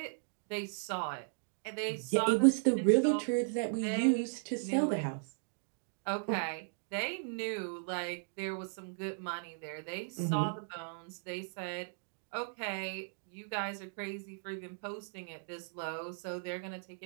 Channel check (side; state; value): left; silent; digital silence